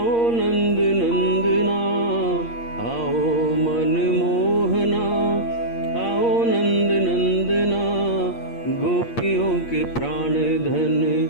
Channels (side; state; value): right; late; 8.6 ms